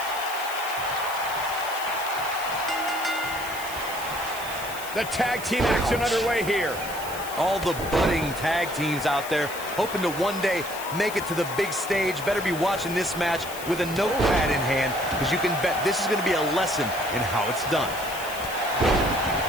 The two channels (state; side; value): noise; left; hiss, 12 dB below the sound